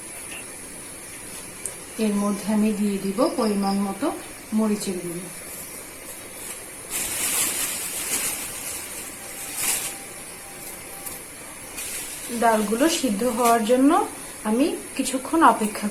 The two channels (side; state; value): both; identical; correlation 1.00